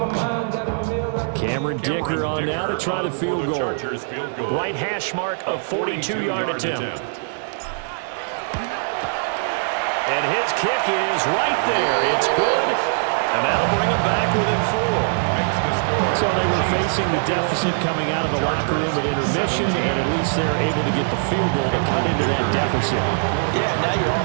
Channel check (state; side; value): silent; left; digital silence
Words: Cameron Dicker on now to try the field goal. Right hash mark of 42-yard attempt. And his kick is right there. It's good. And that'll bring him back within 4. So they were facing the deficit coming out of the locker room at intermission, and at least they're able to get the field goal to cut into that deficit. Yeah, now your